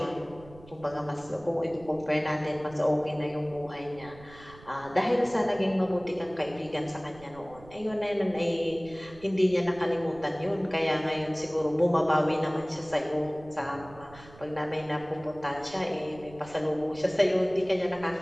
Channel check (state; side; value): noise; right; rumble, 21 dB below the sound